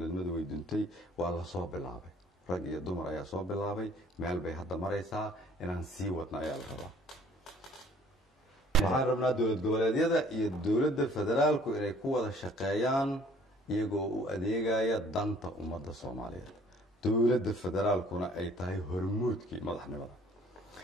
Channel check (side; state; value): both; normal; correlation 0.56